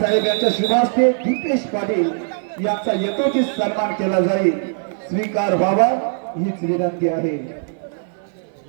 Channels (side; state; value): left; silent; 62 dB below the other